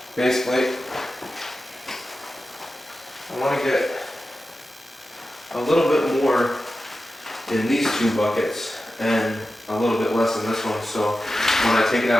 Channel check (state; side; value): normal; both; correlation 0.92